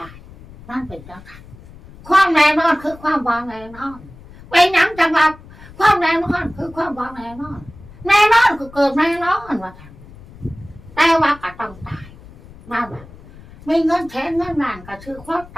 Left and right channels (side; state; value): left; noise; rumble, 20 dB below the sound